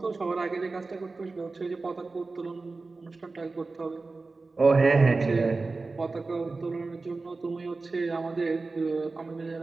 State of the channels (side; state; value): left; quieter; 3.7 dB